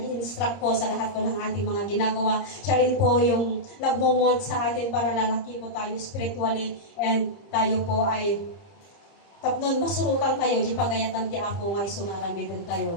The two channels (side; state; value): right; late; 30 ms